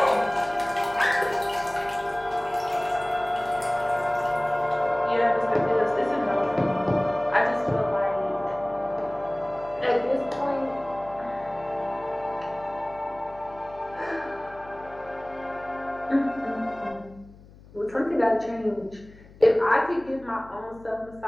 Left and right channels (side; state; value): left; noise; hum, 22 dB below the sound